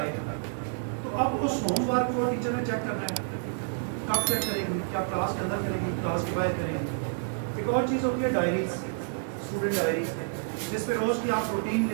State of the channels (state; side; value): silent; left; 56 dB below the other